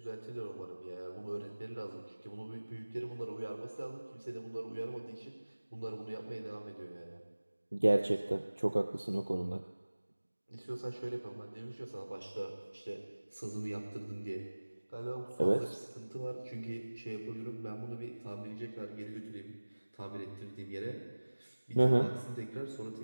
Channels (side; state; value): both; inverted; correlation -1.00